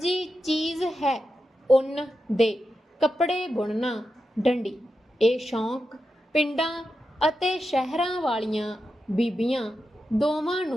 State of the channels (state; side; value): normal; both; correlation 0.89